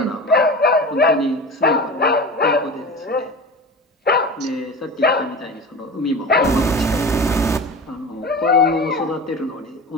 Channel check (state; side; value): normal; both; correlation 0.31